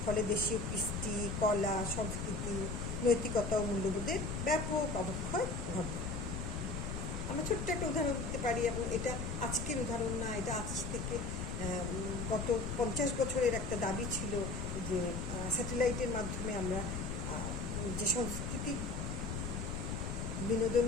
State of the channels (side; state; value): left; noise; rumble, 3 dB below the sound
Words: ফলে দেশীয় কৃষ্টি, কলা, সংস্কৃতি, নৈতিকতা ও মূল্যবোধের ব্যাপক অবক্ষয় ঘটে। আমরা ছোট্ট একটা উদাহরণ দিতে পারি, এবং এটা আজকের উদাহরণ না, এটা আজ থেকে গত 50 বছরের একটা দাবি ছিল যে স্যাটেলাইটের মাধ্যমে আমরা যে সংস্কৃতি